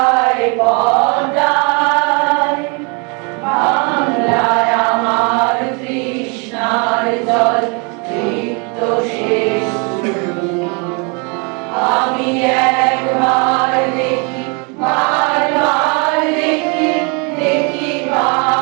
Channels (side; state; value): left; quieter; 33.5 dB